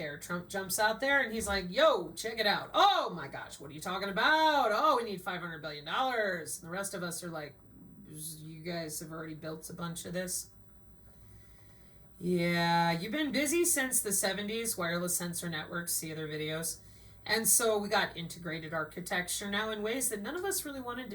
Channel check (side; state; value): both; identical; correlation 1.00